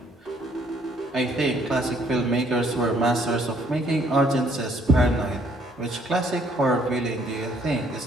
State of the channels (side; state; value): both; normal; correlation 0.65